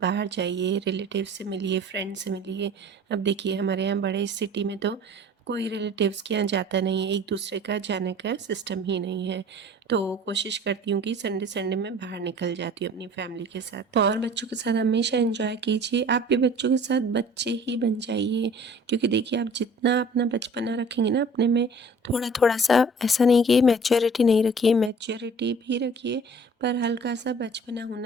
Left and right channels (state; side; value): normal; both; correlation 0.48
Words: बाहर जाइए, रिलेटिव से मिलिए, फ्रेंड से मिलिए। अब देखिए हमारे यहाँ बड़े सिटी में तो कोई रिलेटिव्स के यहाँ जाता नहीं है, एक दूसरे का जाने का सिस्टम ही नहीं है। तो कोशिश करती हूँ कि संडे संडे में बाहर निकल जाती हूँ अपनी फैमिली के साथ। और बच्चों के साथ हमेशा एंजॉय कीजिए, आप भी बच्चों के साथ बच्चे ही बन जाइए। क्योंकि देखिए आप जितना अपना बचपना रखेंगे ना अपने में, थोड़ा थोड़ा सा, ऐसा नहीं कि मैच्योरिटी नहीं रखिए, मैच्योरिटी भी रखिए, पर हल्का सा बचपना